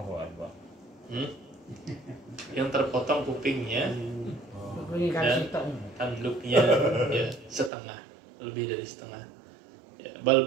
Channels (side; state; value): left; drops out; at 7.7 s